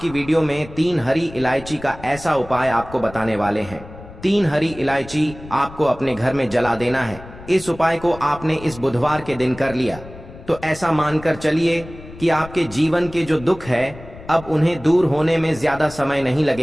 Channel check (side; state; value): left; noise; rumble, 17 dB below the sound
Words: वीडियो में 3 हरी इलायची का ऐसा उपाय आपको बताने वाले हैं। 3 हरी इलायची आपको अपने घर में जला देना है। इस उपाय को आपने इस बुधवार के दिन कर लिया तो ऐसा मानकर चलिए कि आपके जीवन के जो दुख है अब उन्हें दूर होने में ज्यादा समय नहीं